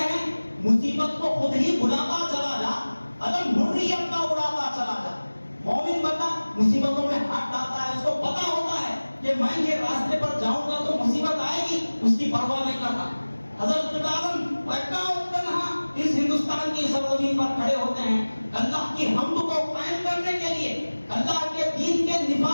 ہیں مصیبت کو خود ہی بلاتا چلا جا، علم حریت کا اڑاتا چلا جا۔ مومن بندہ مصیبتوں میں ہاتھ ڈالتا ہے، اس کو پتا ہوتا ہے کہ میں یہ راستے پر جاؤں گا تو مصیبت آئے گی، اس کی پرواہ نہیں کرتا۔ حضرت عالم اکا تنہا اس ہندوستان کی سرزمین پر کھڑے ہوتے ہیں اللہ کی حمد کو قائم کرنے کے لیے، اللہ کے دین کے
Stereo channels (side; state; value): both; inverted; correlation -1.00